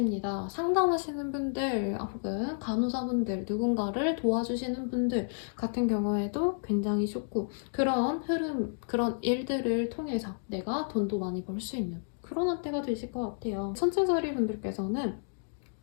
상담하시는 분들 혹은 간호사분들 누군가를 도와주시는 분들 같은 경우에도 굉장히 좋고 그런 흐름, 그런 일들을 통해서 내가 돈도 많이 벌 수 있는 그런 한때가 되실 것 같아요. 천체자리 분들께서는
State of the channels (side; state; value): right; silent; digital silence